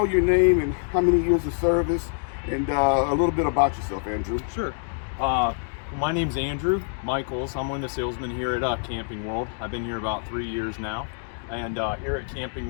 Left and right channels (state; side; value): silent; right; digital silence